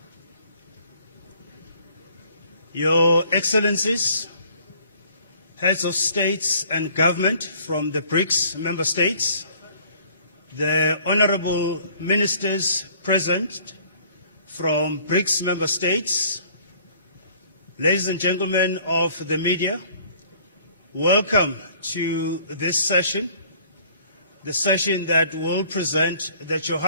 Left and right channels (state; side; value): inverted; both; correlation -0.55